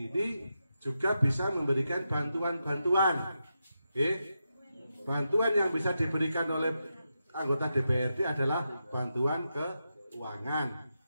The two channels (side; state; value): both; inverted; correlation -0.87